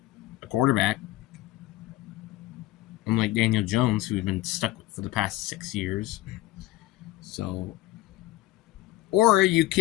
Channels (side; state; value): right; quieter; 16.6 dB